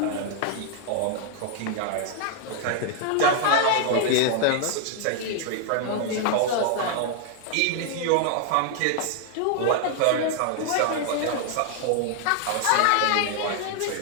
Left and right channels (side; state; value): both; different; correlation 0.00